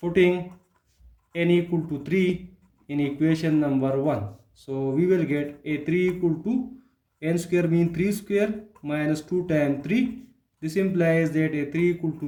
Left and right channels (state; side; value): identical; both; correlation 1.00